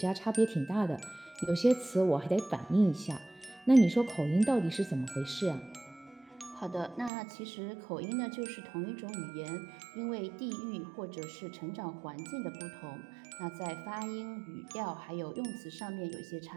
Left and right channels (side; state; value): left; drops out; at 7.1 s